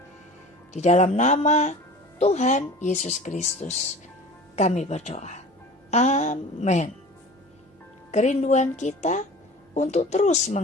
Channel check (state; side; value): normal; both; correlation 0.40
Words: Di dalam nama Tuhan Yesus Kristus kami berdoa. Amin. Kerinduan kita untuk terus